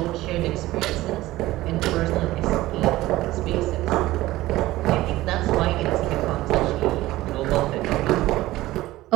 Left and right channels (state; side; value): quieter; left; 17.1 dB